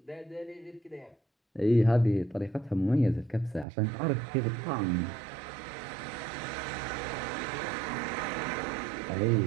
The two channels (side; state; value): left; drops out; at 3.7 s